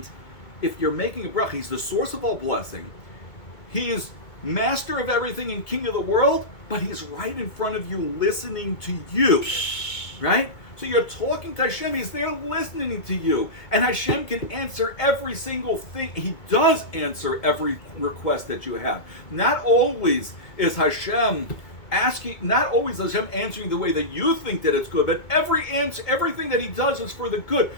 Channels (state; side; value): late; right; 2.2 ms